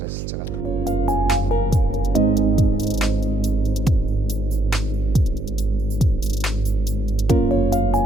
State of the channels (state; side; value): noise; right; hum, 7 dB below the sound